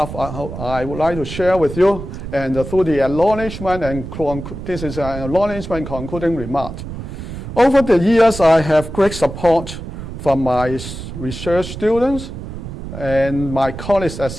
I would like to share with you, and through the acknowledgement and this is an acknowledgement concluding remark. Over the years, I have great support from my research students and my colleagues at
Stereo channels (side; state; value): right; noise; rumble, 9 dB below the sound